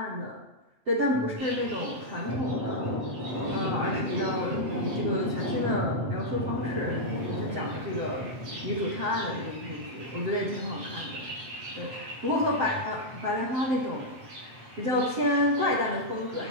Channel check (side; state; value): left; late; 7.8 ms